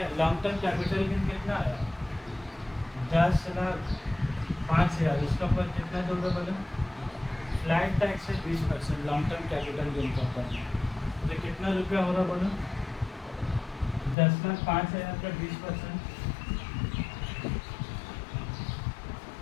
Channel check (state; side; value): drops out; right; at 14.2 s